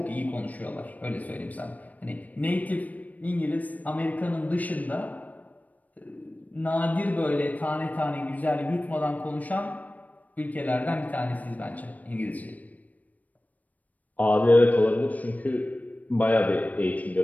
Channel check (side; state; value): right; late; 0.075 ms